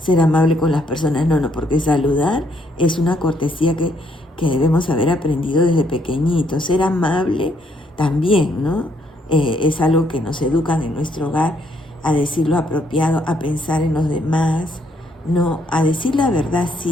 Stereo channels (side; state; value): both; normal; correlation 0.71